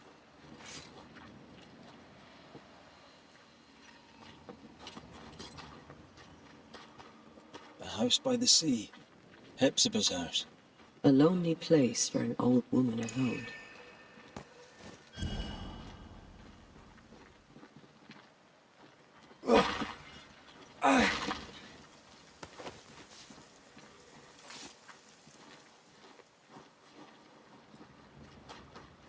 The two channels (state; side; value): identical; both; correlation 1.00